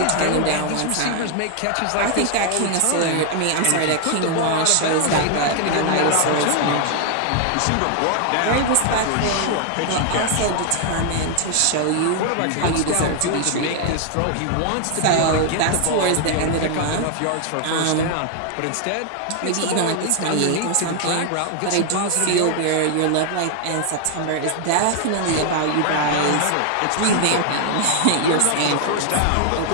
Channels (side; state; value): both; different; correlation 0.00